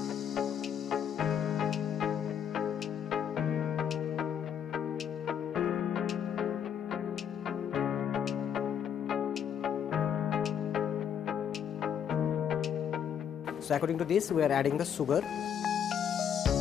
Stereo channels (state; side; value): quieter; right; 8.5 dB